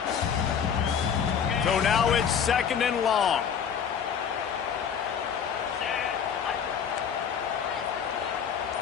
So now it's 2nd and long.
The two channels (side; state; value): right; quieter; 7.5 dB